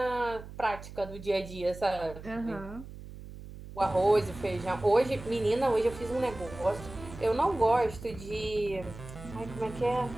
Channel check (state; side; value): noise; right; hum, 14 dB below the sound